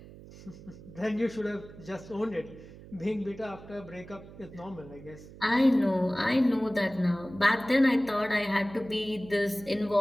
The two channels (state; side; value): noise; right; hum, 18 dB below the sound